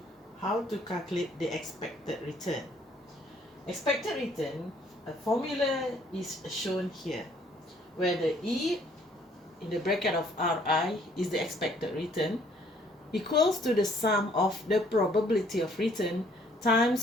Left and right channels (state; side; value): normal; both; correlation 0.62